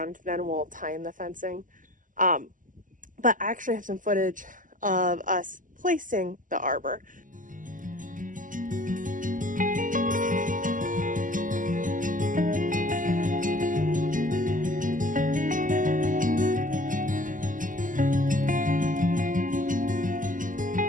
Then we'll tie in the fencing. But I actually have some footage of us placing the arbor.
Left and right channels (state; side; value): late; left; 0.38 ms